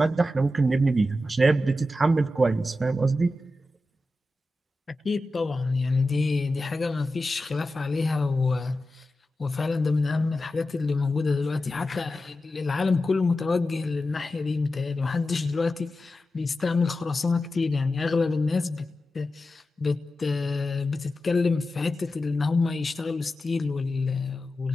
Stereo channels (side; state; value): both; normal; correlation 0.92